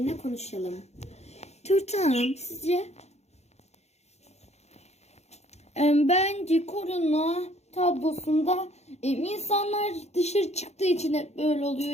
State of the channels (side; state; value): right; late; 0.32 ms